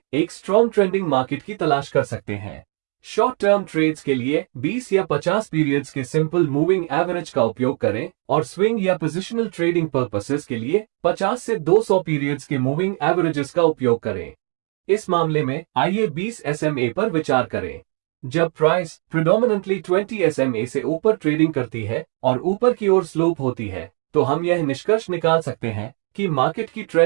एक स्ट्रॉन्ग ट्रेंडिंग मार्केट की तलाश कर सकते हैं। शॉर्ट टर्म ट्रेड्स के लिए 20 या 50 पीरियड्स के सिंपल मूविंग एवरेज का उपयोग करें और स्विंग या पोजिशनल ट्रेडिंग पर्पसेस के लिए 50 से 200 पीरियड्स के मूविंग एवरेजेस का उपयोग करें। इस मामले में आइए 20 SMA पर विचार करें। जब प्राइस प्रिडोमिनेंटली 20 SMA से ऊपर ट्रेडिंग करती है और ऊपर की ओर स्लोप होती है तो हम यह निष्कर्ष निकाल सकते हैं कि मार्केट की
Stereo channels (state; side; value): quieter; left; 39.9 dB